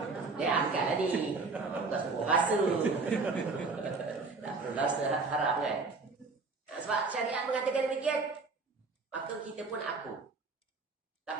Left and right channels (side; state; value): left; quieter; 4.0 dB